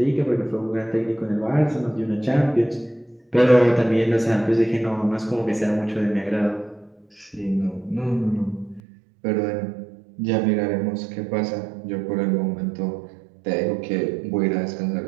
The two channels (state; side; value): drops out; left; at 8.8 s